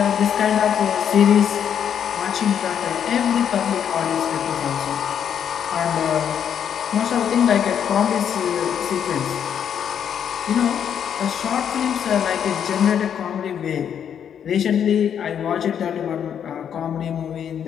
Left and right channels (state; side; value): quieter; right; 8.6 dB